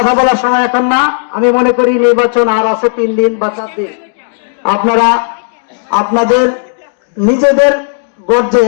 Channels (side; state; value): right; silent; digital silence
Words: বলার সময় এখন না। আমি মনে করি নির্বাচন আর আছে 3 দিন বা 4 দিন। আপনারা আপনাদের নিজেদের গর্জে